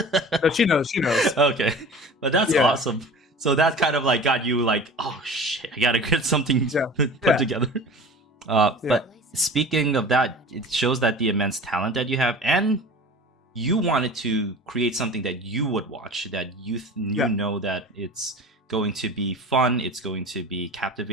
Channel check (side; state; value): both; normal; correlation 0.38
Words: No, she knows. Okay, but that's awesome. So that kind of like got you like, oh shit, I gotta get something Yeah. put together. Yeah. But speaking of that, it shows that the immense talent that you have, and you wanted to create something that you would watch, that you know that it's going to be fun, it's going to be